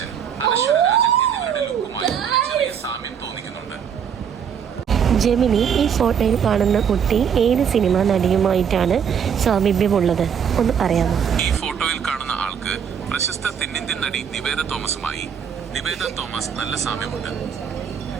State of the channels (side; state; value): left; quieter; 7.7 dB